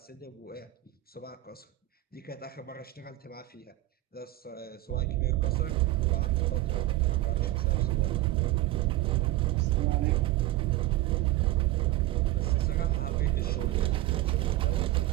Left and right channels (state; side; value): quieter; left; 16.4 dB